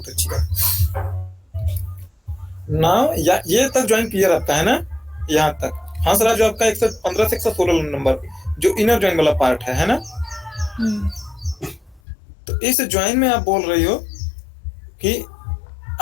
अच्छी बात। नाउ ये तक ज्वाइन क्लियर आपका है ना, यहाँ तक। हाँ सर, जो आपका 115 से 116 नंबर जो इनर ज्वाइन वाला पार्ट है ना, तो इस ज्वाइन में आप बोल रही हो कि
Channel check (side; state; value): right; drops out; at 12.0 s